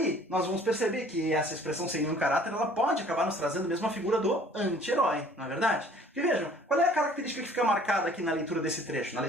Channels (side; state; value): both; normal; correlation 0.53